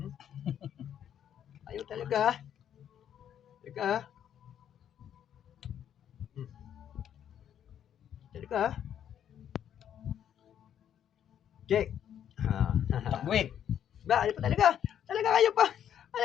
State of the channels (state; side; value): quieter; right; 9.7 dB